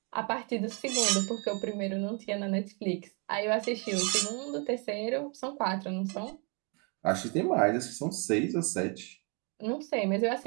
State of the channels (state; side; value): quieter; left; 34.3 dB